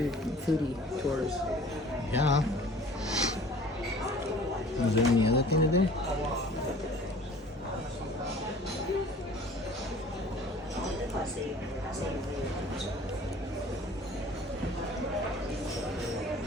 foodie tours. Yeah. Is there any other thing to do?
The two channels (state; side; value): normal; both; correlation 0.48